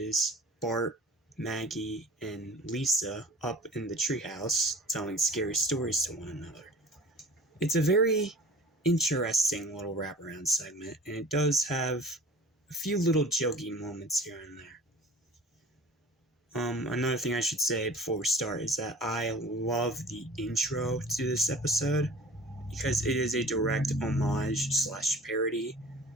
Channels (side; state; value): both; normal; correlation 0.44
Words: Bart, Maggie, and Lisa up in the treehouse telling scary stories to one another. It's a very interesting little wraparound segment, and it does have a few little jokey moments here and there. Another thing I should say before we start is that I love the intro to this episode because it is a direct homage / parody